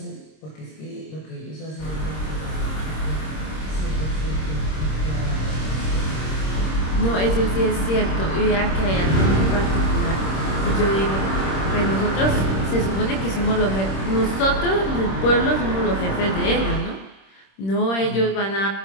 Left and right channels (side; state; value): right; late; 26 ms